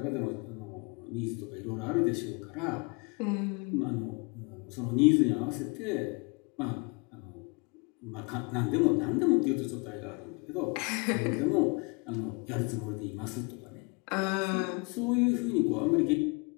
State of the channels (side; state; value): right; quieter; 30.5 dB